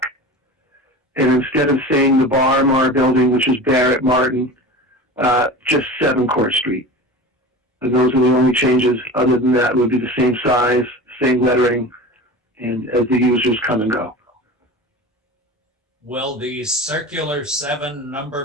And instead of saying the Bar building, which is Barrett Martin, just 7 Court Street. And those are the only changes. Other than that, it would be the same size, same lettering, and as the users come and go. Will the circular 7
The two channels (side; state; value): both; normal; correlation 0.33